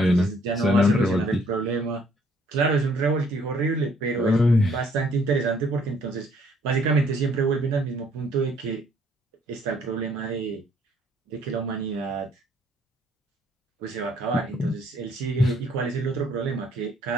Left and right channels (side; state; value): both; normal; correlation 0.64